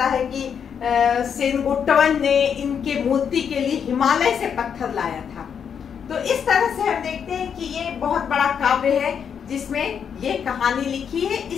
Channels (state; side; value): quieter; right; 7.5 dB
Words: है कि सेनगुट्टवन ने इनके मूर्ति के लिए हिमालय से पत्थर लाया था। तो इस तरह से हम देखते हैं कि ये बहुत बड़ा काव्य है जिसमें ये कहानी लिखी है।